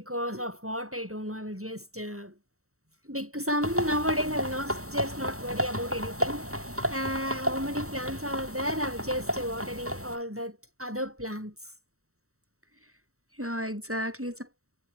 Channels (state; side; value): late; left; 0.64 ms